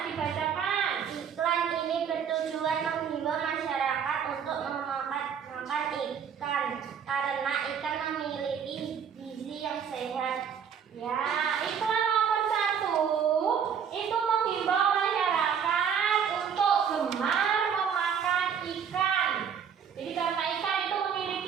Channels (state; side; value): quieter; left; 7.5 dB